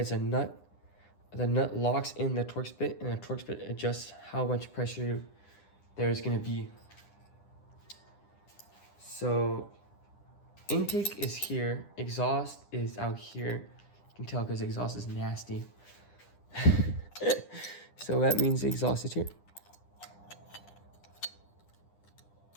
a nut. The nut locks in the Torx bit, and the Torx bit adjusts how much pressure there's gonna be. So intake is here, exhaust is out here. You can tell because exhaust is nasty. So that means the exhaust is here.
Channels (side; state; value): right; late; 9.9 ms